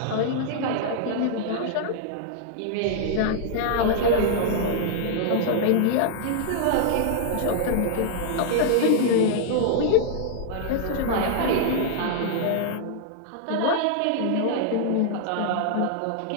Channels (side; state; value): both; different; correlation -0.01